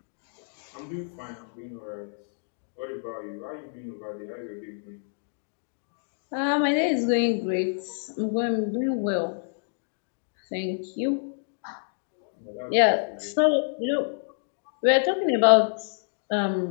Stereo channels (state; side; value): silent; right; digital silence